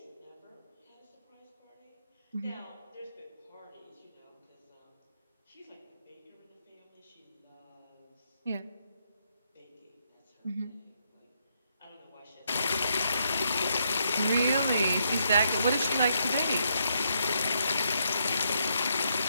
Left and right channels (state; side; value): inverted; both; correlation -0.77